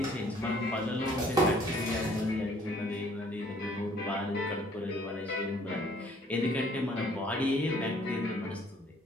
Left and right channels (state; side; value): normal; both; correlation 0.59